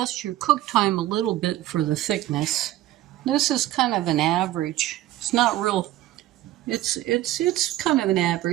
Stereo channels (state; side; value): quieter; left; 14.8 dB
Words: your cook time a little bit for the thickness. This is kind of an average. It's not real. It's kind of an